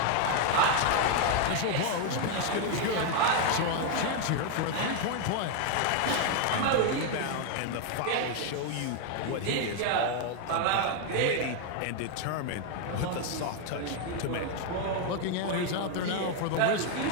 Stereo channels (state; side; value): different; both; correlation 0.01